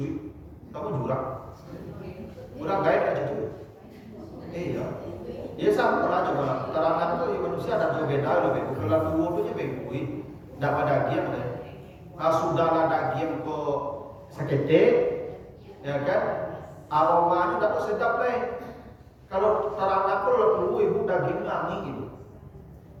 kamu jurang. Jurang gaya aja tuh. Iya. Ya sama aja malah. Teranak itu manusia ada juga beda lebih. Kalau tua itu bengkui. Tak pada giat lain. Sudah ada giat kok sakete, ya kan? Aromanya tak sedap lain. Kalau teranak itu tua ibu daging angin gitu.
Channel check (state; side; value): identical; both; correlation 1.00